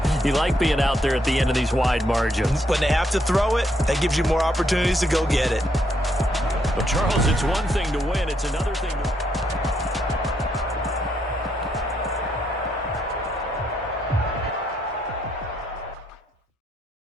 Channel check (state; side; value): normal; both; correlation 0.75